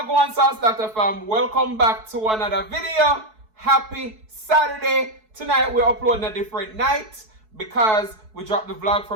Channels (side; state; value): left; late; 4.6 ms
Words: Sauce Dackta fam, welcome back to another video. Happy Saturday. Tonight we're uploading a different night because we dropped the vlog